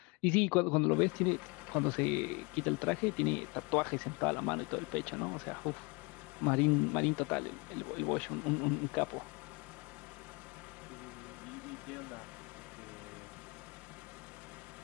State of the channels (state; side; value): quieter; right; 29.0 dB